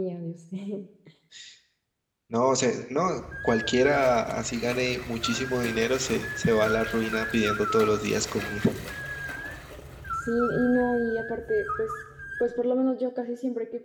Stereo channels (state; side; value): identical; both; correlation 1.00